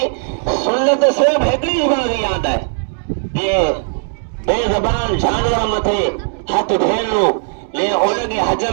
سنت صرف ہکڑی بات یاد ہے یہ بے زبان جانور متھے ہاتھ پھیرنو لے ان کے حج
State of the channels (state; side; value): silent; left; digital silence